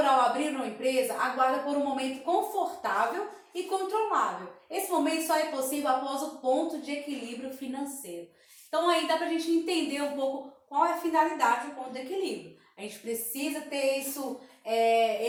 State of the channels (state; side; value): identical; both; correlation 1.00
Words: ao abrir uma empresa, aguarda por um momento confortável e controlável. Esse momento só é possível após o ponto de equilíbrio financeiro. Então aí dá para a gente entender um pouco qual é a finalidade do ponto de equilíbrio. A gente precisa ter isso,